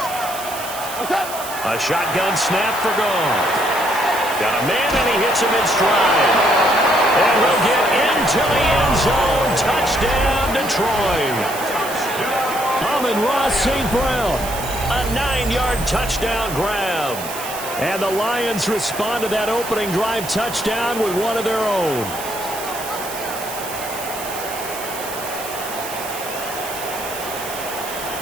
A shotgun snap for Goff. Got a man, and he hits him in stride. And he'll get into the end zone. Touchdown, Detroit. Amon-Ra St. Brown. A 9-yard touchdown grab. And the Lions respond to that opening drive touchdown with one of their own.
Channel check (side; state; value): right; noise; hiss, 10 dB below the sound